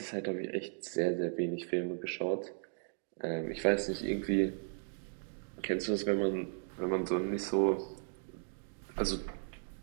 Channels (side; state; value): left; silent; 54 dB below the other